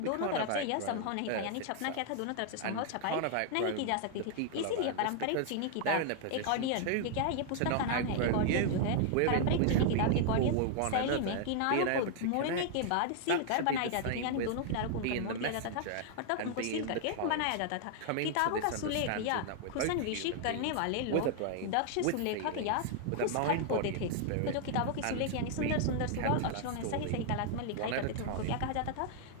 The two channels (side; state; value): both; different; correlation 0.00